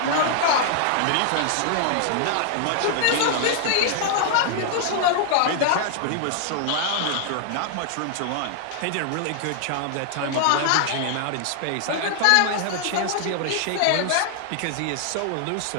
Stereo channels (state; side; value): different; both; correlation -0.01